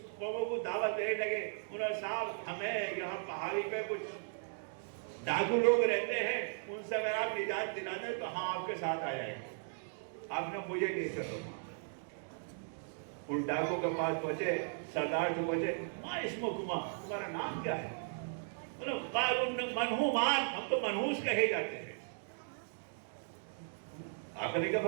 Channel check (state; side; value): silent; left; digital silence